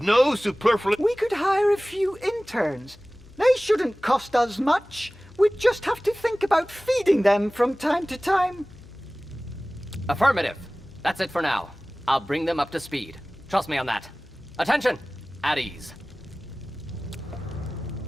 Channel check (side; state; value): left; noise; hum, 24 dB below the sound